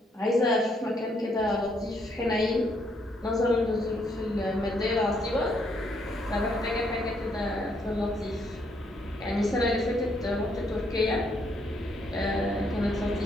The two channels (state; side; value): normal; both; correlation 0.72